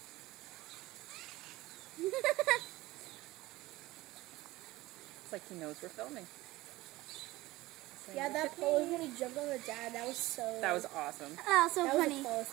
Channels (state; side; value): quieter; left; 18.8 dB